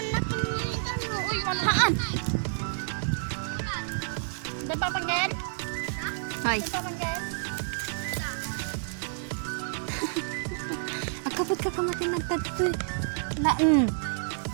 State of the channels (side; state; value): left; silent; 58 dB below the other